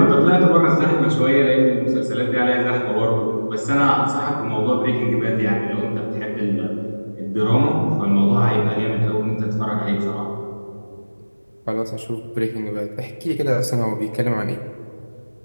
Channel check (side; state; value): both; inverted; correlation -1.00